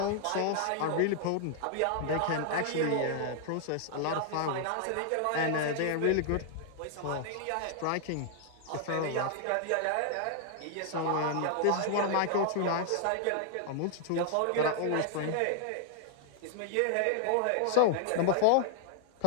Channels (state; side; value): different; both; correlation -0.01